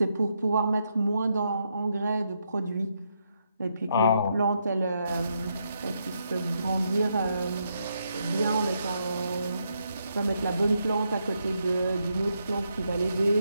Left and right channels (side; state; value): both; inverted; correlation -0.79